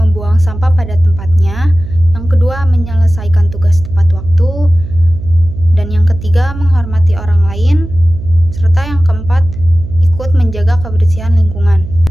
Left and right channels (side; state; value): right; noise; hum, 11 dB below the sound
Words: sampah pada tempatnya; yang kedua, menyelesaikan tugas tepat waktu; dan yang ketiga, menghormati orang lain; serta yang keempat, ikut menjaga kebersihan lingkungan.